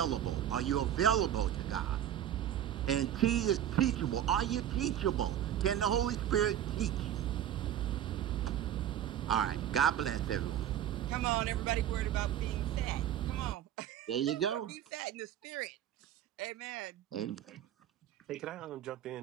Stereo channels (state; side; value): quieter; left; 10.9 dB